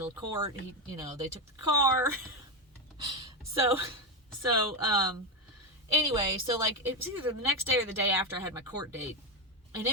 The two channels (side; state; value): both; normal; correlation 0.12